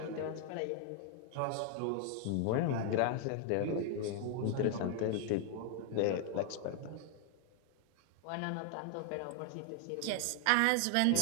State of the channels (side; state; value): both; different; correlation 0.00